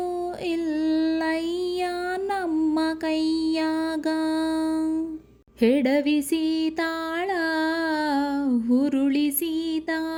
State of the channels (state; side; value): identical; both; correlation 1.00